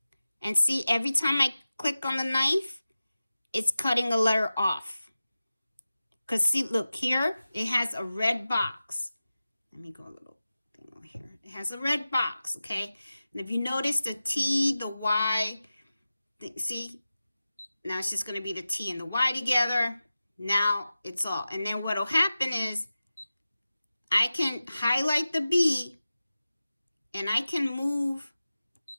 And see, every time I click on the knife, it's cutting a letter off. Because see, look here, it has a red box. Let me go a little thing over here. It has a red box, okay? And if you notice the T, the Y, see, now it's just going to be the T and the Y together. Now it's all. And then what will happen is I can highlight the B and I can move.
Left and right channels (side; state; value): both; inverted; correlation -0.95